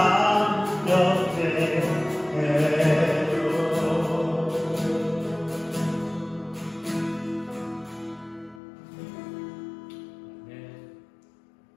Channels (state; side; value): drops out; right; at 8.6 s